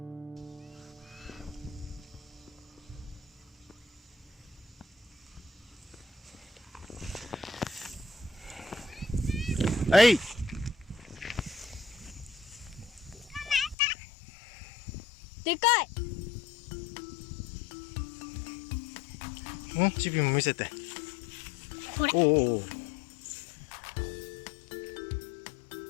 はい。でかい。チビも見せて。これ。お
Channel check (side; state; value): right; drops out; at 13.8 s